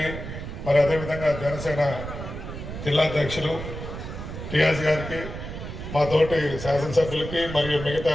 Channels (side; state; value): right; noise; rumble, 8 dB below the sound